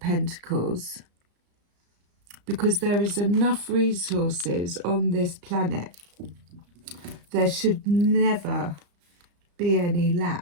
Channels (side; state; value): left; late; 34 ms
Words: because there is enough resources on this planet. There should never be any